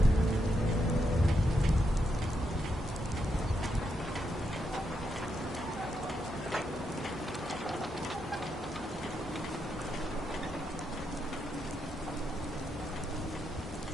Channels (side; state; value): both; normal; correlation 0.82